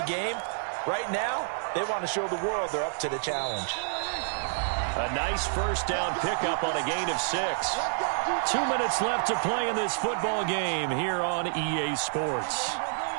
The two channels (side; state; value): left; silent; digital silence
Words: game. Right now, they want to show the world they're up to the challenge. A nice first down pickup on a gain of 6. 2 minutes left to play in this football game here on EA Sports.